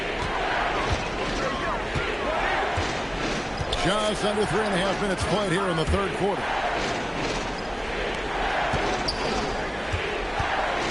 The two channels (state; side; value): identical; both; correlation 1.00